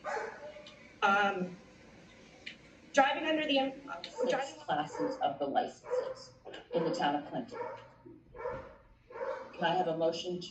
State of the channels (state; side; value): identical; both; correlation 1.00